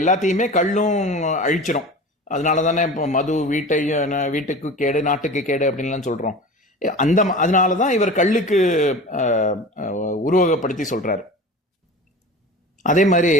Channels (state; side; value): normal; both; correlation 0.35